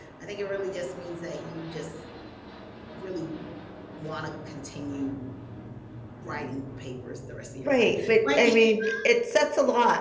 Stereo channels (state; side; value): identical; both; correlation 1.00